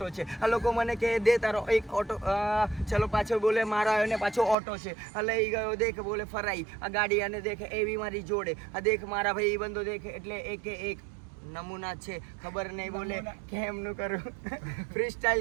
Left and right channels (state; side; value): drops out; left; at 4.5 s